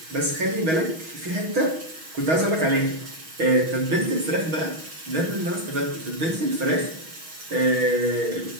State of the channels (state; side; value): late; left; 6.2 ms